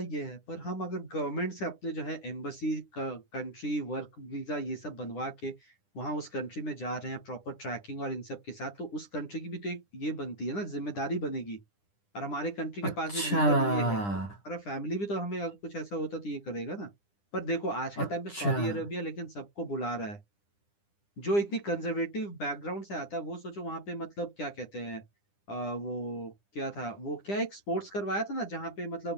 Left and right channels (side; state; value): right; late; 9.9 ms